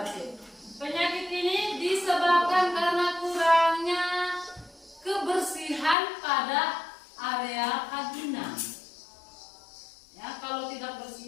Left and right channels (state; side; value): drops out; right; at 6.0 s